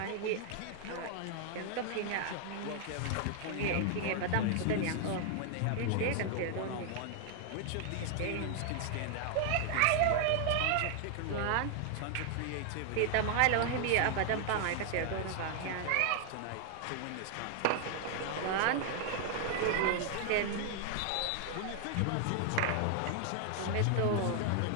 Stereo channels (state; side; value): different; both; correlation 0.00